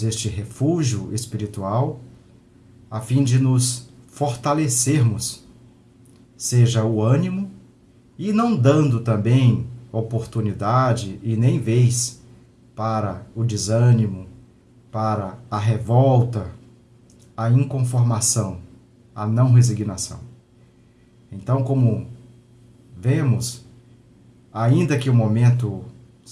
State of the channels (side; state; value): both; identical; correlation 1.00